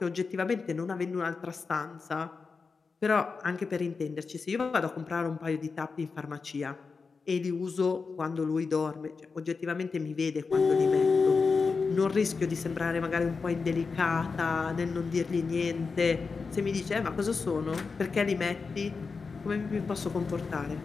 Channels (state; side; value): quieter; right; 4.7 dB